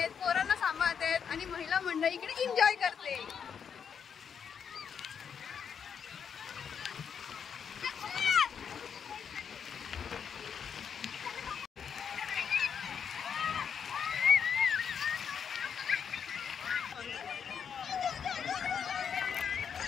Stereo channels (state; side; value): quieter; right; 7.2 dB